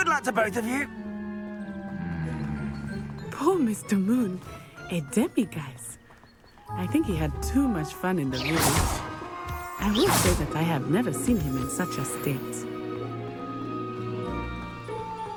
luck to both of you. Poor Mr. Moon. A demiguise. I think he had too much fun in the village. I will say that I have never seen him in such a state.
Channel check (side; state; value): both; identical; correlation 1.00